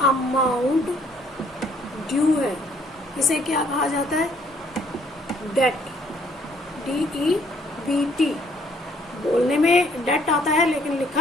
अमाउंट ड्यू है, इसे क्या कहा जाता है? डेट। DEBT बोलने में डेट आता है, लेकिन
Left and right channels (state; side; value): normal; both; correlation 0.64